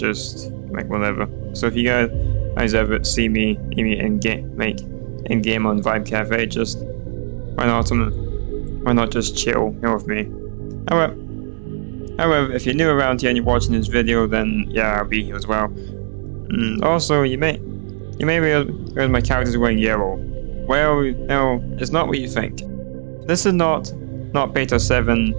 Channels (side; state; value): left; silent; digital silence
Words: like whatever. So if you guys ever see me in game on Vibe Cafe, just why not just chill here with me. However, if you're new around here and you're watching this video, then yeah, I'll be here as well. Also, you may realize my character's wearing yellow. Well, no, it's not what you think. This is not Beta